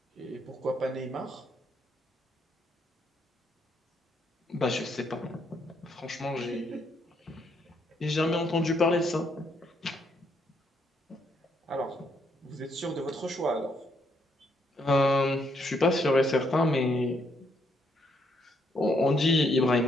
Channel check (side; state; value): both; normal; correlation 0.73